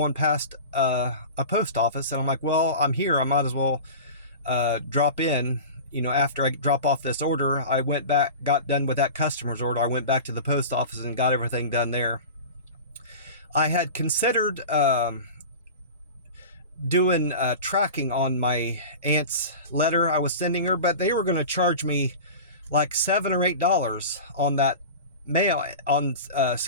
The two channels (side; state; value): both; inverted; correlation -0.33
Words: past a post office, and I'm like, well, I'm here, I might as well drop in. After I drop off this order, I went back, got done with that customer's order. I went back to the post office and got everything done there. I had considered doing tracking on my aunt's letter I was sending her, but they were going to charge me like $7 or $8 on that mail, on